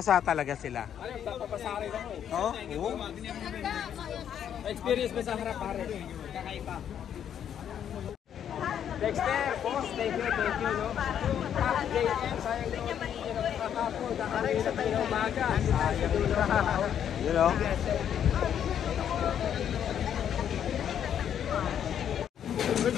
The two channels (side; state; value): right; quieter; 9.2 dB